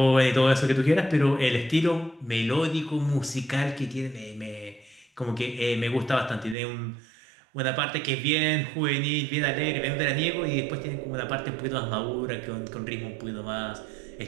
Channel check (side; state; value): left; drops out; at 6.6 s